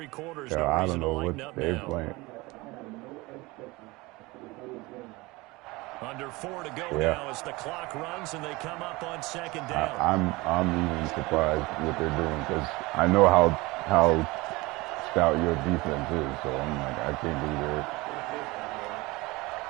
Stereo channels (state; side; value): quieter; left; 22.5 dB